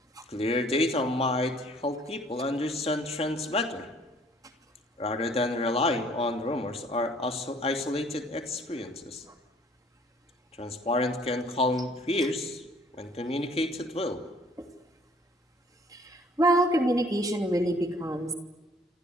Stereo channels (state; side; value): normal; both; correlation 0.57